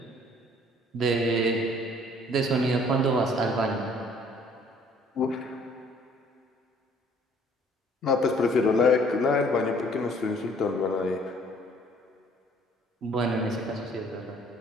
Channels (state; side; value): normal; both; correlation 0.58